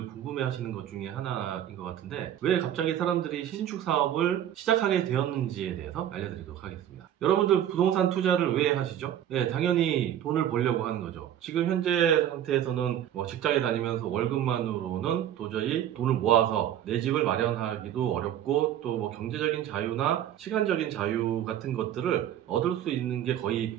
궁금해 하시는 것 중에 하나인 것 같은데, 왜 갑자기 사람들이 신축 사업을 시작하게 되었는지에 대해서 알려드리도록 하겠습니다. 여러분들 부동산 투자를 왜 하시죠? 네, 당연히 돈을 벌려고 하는 거죠. 지금 현재 상태에서는 직장에 다니면서 월급만으로는 도저히 돈을 모아서 내 집을 마련하기도 어렵고, 또 경제적인 자유나 시간적인 자유 같은 것들을 얻을 수 있는 게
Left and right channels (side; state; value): left; quieter; 10.9 dB